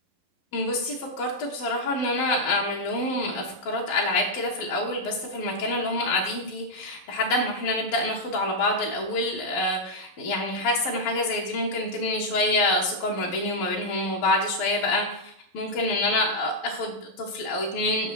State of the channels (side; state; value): right; late; 12 ms